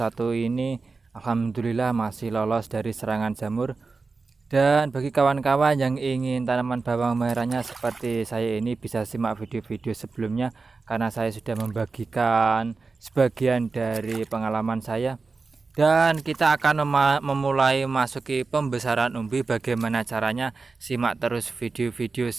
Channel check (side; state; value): left; quieter; 4.2 dB